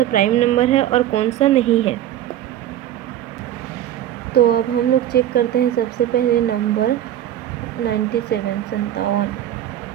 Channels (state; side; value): quieter; left; 12.0 dB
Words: प्राइम नंबर है और कौन सा नहीं है। तो अब हम लोग चेक करते हैं सबसे पहले नंबर 97,